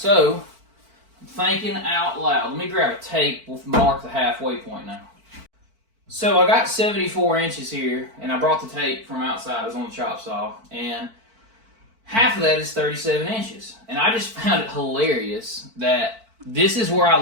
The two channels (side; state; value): left; late; 4.5 ms